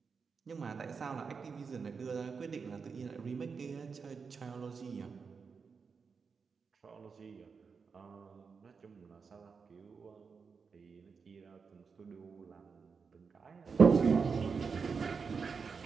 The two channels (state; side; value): quieter; left; 5.4 dB